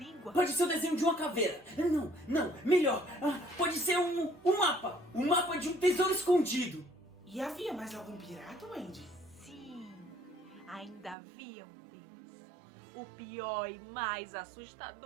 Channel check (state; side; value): drops out; left; at 11.2 s